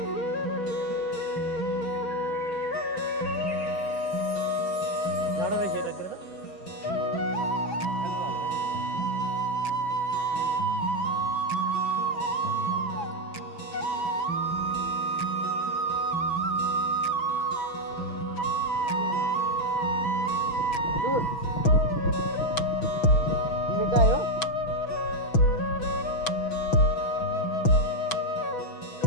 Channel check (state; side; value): late; right; 6.2 ms